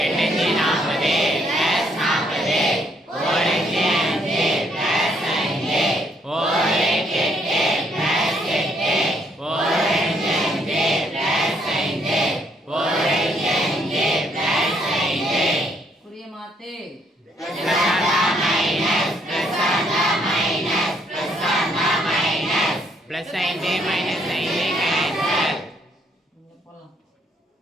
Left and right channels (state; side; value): normal; both; correlation 0.70